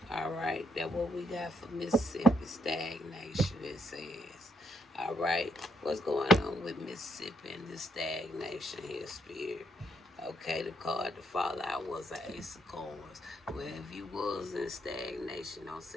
All right, that's what we got for Mississippi. Stagnation, it says. All right, what's going on with Mississippi and this stagnation here, Spirit? Okay, the card to fall out was an Ace of Coins. Well, if you was in stagnation, don't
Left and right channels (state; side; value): normal; both; correlation 0.75